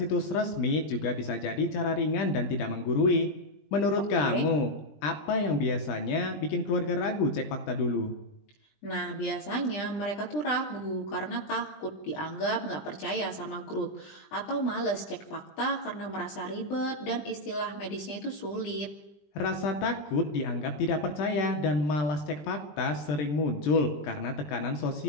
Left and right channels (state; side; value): late; right; 20 ms